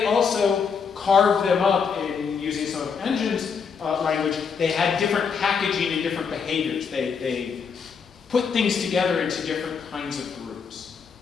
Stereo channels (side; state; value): right; quieter; 6.1 dB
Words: also carved them up in using some of Engine's language. They had different packaging and different behaviors. They put things together into different kinds of groups.